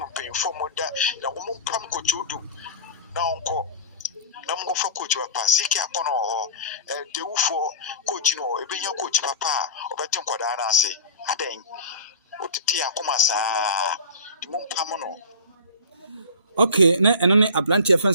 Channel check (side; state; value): both; inverted; correlation -0.34